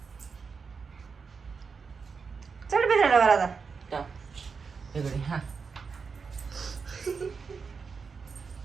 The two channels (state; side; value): quieter; left; 5.3 dB